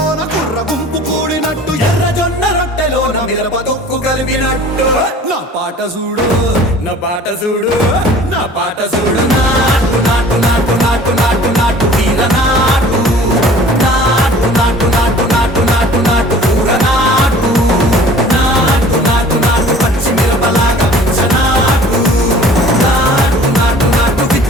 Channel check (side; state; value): both; normal; correlation 0.47